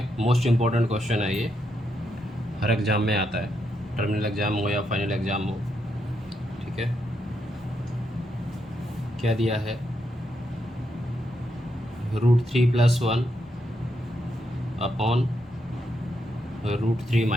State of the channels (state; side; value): normal; both; correlation 0.81